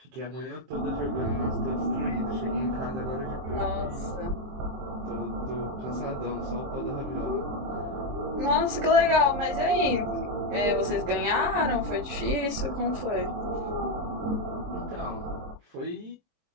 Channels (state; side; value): late; left; 23 ms